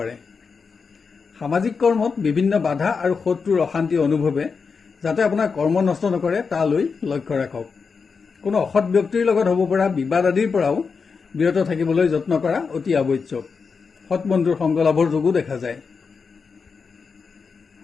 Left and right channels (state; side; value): quieter; right; 5.3 dB